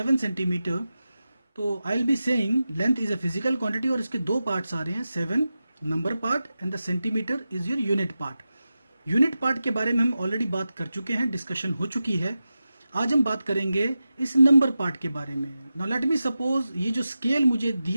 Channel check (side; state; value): both; inverted; correlation -0.93